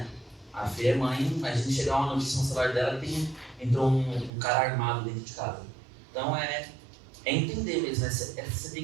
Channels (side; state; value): left; drops out; at 4.3 s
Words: A Fê é mãe, a gente chegar uma notícia no celular dela que entrou um cara armado dentro de casa. Então é entender mesmo, né? Você tem